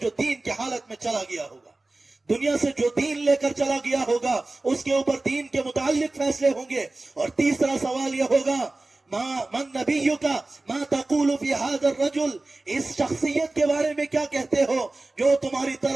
جو دین کی حالت میں چلا گیا ہوگا. دنیا سے جو دین لے کر چلا گیا ہوگا اس کے اوپر دین کے متعلق فیصلے ہوں گے. اور تیسرا سوال یہ ہوگا من نبیک ما تقول فی ھذا الرجل, اس شخصیت کے بارے میں کیا کہتے ہو جو تمہاری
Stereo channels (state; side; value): quieter; left; 3.0 dB